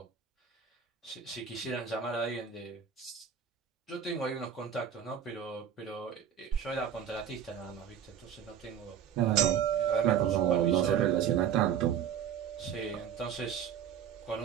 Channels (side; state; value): left; quieter; 8.5 dB